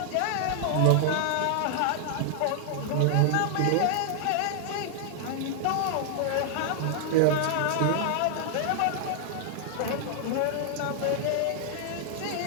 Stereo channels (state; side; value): different; both; correlation 0.00